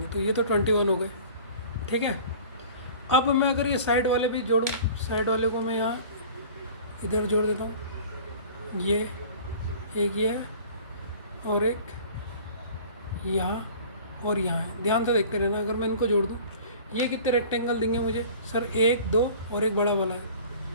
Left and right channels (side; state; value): both; inverted; correlation -0.45